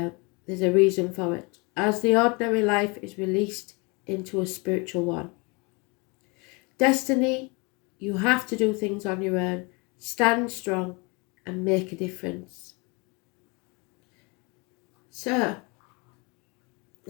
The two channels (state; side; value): quieter; right; 29.3 dB